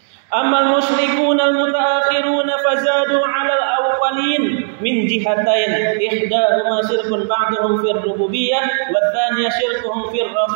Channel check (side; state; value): left; silent; 65 dB below the other